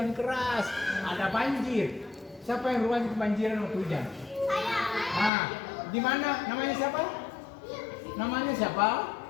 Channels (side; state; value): right; drops out; at 5.3 s